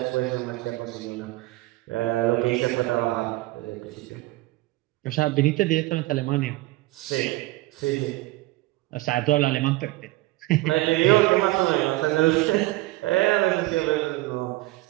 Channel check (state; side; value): quieter; left; 19.3 dB